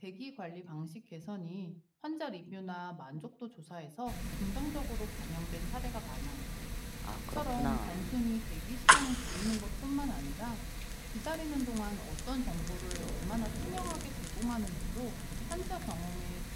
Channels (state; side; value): identical; both; correlation 1.00